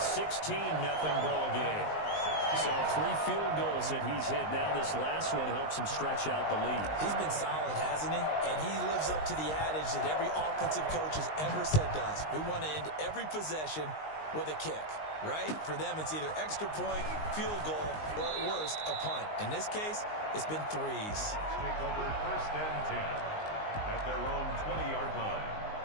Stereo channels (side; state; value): right; late; 19 ms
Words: ball game. So 3 field goals that he's hit now. This last one helps him stretch out the lead. He's been solid, hasn't he? And he lives up to the adage that every offensive coach has ever said to us. We want to end every possession with a kick, right? For them, it's either extra point, field goal, or at worst, a punt. In this case, it's been 3s. Take over 1st and 10 at their own 20-yard line.